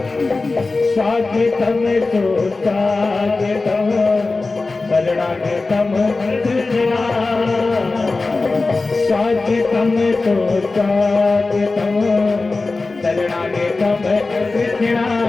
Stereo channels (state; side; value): quieter; right; 3.6 dB